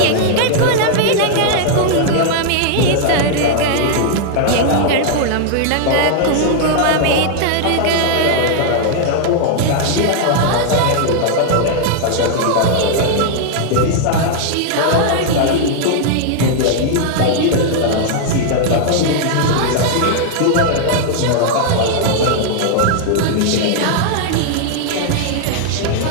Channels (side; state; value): both; different; correlation -0.01